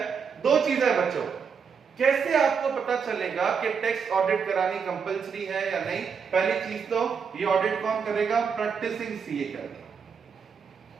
2 चीजें है बच्चों। कैसे आपको पता चलेगा कि टैक्स ऑडिट करानी कंपलसरी है या नहीं? पहली चीज तो ये ऑडिट कौन करेगा? प्रैक्टिसिंग CA करेगा।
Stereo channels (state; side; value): quieter; left; 6.2 dB